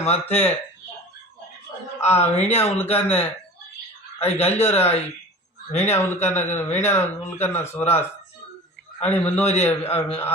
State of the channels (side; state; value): both; normal; correlation 0.39